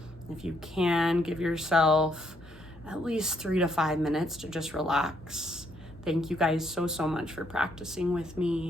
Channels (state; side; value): normal; both; correlation 0.72